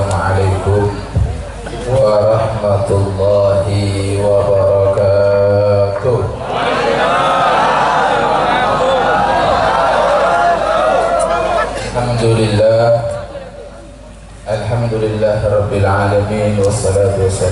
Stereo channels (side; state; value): both; identical; correlation 1.00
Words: warahmatullahi wabarakatuh. Alhamdulillah Rabbil Alamin. Wassalatu